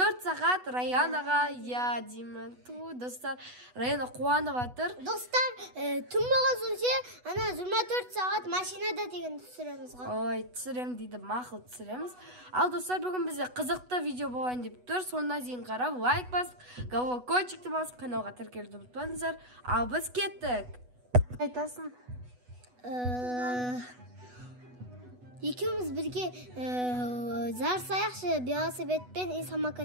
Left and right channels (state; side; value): late; left; 8.1 ms